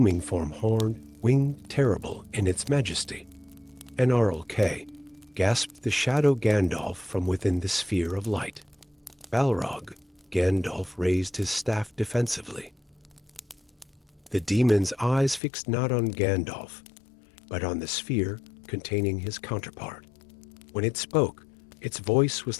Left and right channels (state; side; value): drops out; right; at 15.4 s